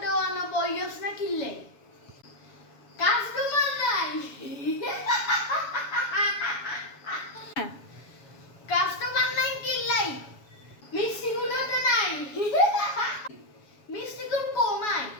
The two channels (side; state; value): right; late; 7.1 ms